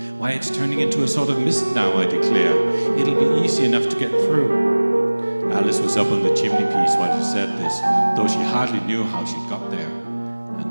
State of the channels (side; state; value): both; inverted; correlation -1.00